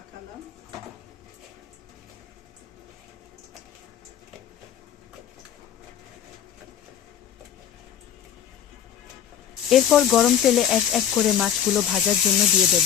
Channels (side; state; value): right; quieter; 9.4 dB